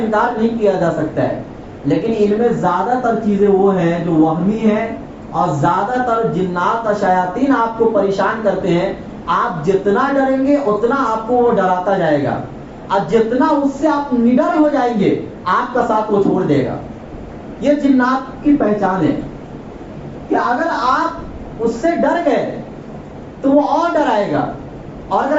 نہیں کیا جا سکتا ہے، لیکن ان میں زیادہ تر چیزیں وہ ہیں جو وہمی ہیں، اور زیادہ تر جنات اور شیاطین آپ کو پریشان کرتے ہیں۔ آپ جتنا ڈریں گے اتنا آپ کو وہ ڈراتا جائے گا، اور جتنا اس سے آپ نڈر ہو جائیں گے آپ کا ساتھ وہ چھوڑ دے گا۔ یہ جنات کی پہچان ہے کہ اگر آپ اس سے ڈر گئے تو وہ اور ڈرائے گا، اور اگر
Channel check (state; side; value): identical; both; correlation 1.00